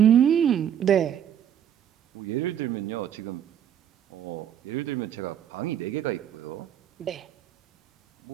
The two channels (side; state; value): left; quieter; 9.6 dB